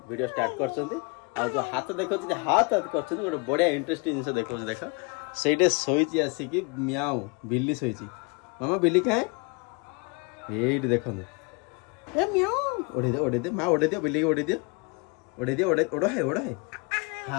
वीडियो स्टार्ट कर जो हाथ देखो हाथ हाथ कर गोटे बढ़िया इंटरेस्टिंग जिन देखो देख से शोची आसिक म्याऊ बिल्ली शोची मामा बिल्ली कहाँ ये देखो म्याऊ ओढ़े दे माँ ओढ़े दियो बिल्ली ओढ़े दियो ओढ़ है ओढ़ है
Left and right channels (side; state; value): right; quieter; 31.1 dB